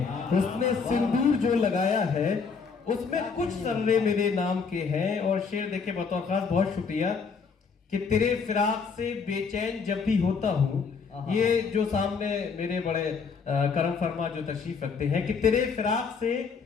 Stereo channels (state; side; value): quieter; right; 5.4 dB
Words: उसने सिंदूर जो लगाया है, उसमें कुछ जर्रे मेरे नाम के हैं। और शेर देखे बतौर खास, बहुत शुक्रिया कि तेरे फिराक से बेचैन जब भी होता हूँ। ये जो सामने मेरे बड़े करम फरमा जो तशरीफ रखते हैं कि तेरे फिराक से